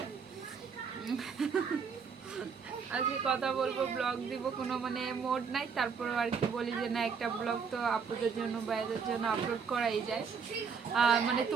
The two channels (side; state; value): left; quieter; 6.0 dB